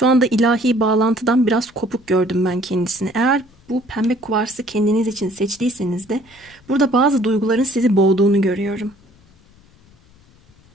anda ilahi bağlantıdan biraz kopuk gördüm ben kendisini. Eğer bu pembe kuvarsı kendiniz için seçtiyseniz de burada bazı duyguların sizi boğduğunu görüyorum.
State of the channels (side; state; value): left; noise; rumble, 29 dB below the sound